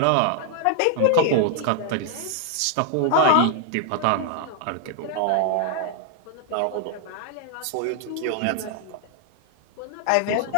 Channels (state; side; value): different; both; correlation 0.00